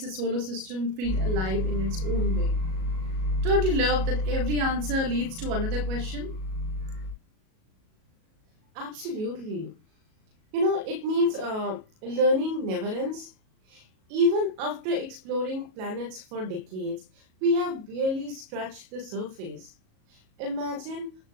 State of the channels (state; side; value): late; left; 37 ms